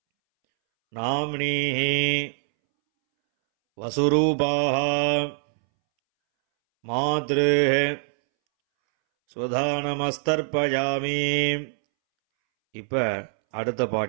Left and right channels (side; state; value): left; silent; 63 dB below the other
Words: நாம்னீஹி வசுரூபாஹ மாத்ருஹ ஸ்வதானமஸ்தர்ப்பயாமி. இப்போ அடுத்த